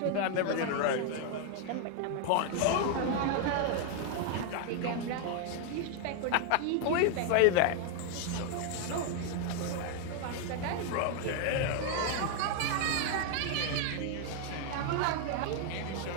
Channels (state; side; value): different; both; correlation 0.00